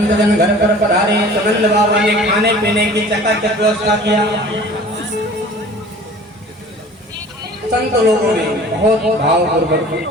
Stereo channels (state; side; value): normal; both; correlation 0.45